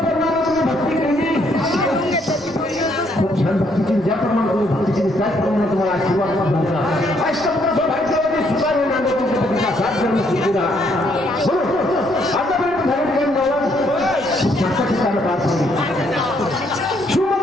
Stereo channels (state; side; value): normal; both; correlation 0.70